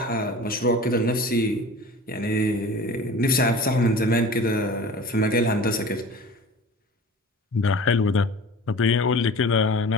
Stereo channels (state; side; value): normal; both; correlation 0.39